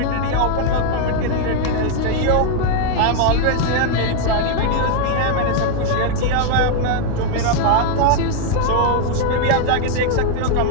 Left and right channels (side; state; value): both; different; correlation 0.00